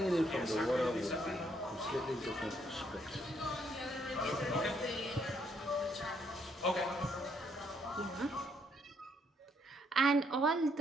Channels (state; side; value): normal; both; correlation 0.71